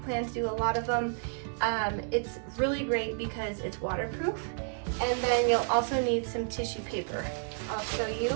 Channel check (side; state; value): left; silent; 57 dB below the other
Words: to do a lot of them. It's really great because it's waterproof. And then you'll also need some tissue paper. I'll show